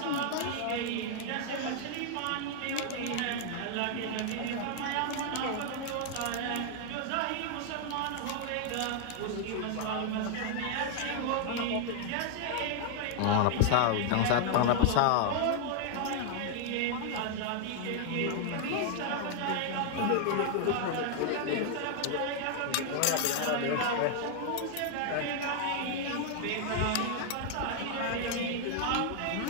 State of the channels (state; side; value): different; both; correlation 0.00